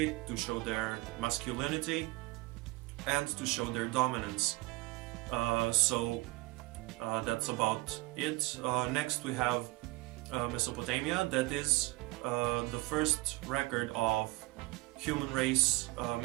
to show their masculinity and to show their dominance. So that's about it. Next we have Mesopotamia. That is the first record of human race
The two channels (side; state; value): left; quieter; 22.1 dB